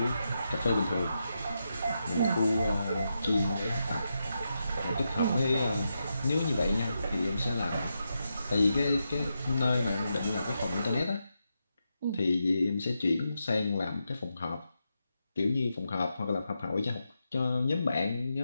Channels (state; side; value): inverted; both; correlation -0.86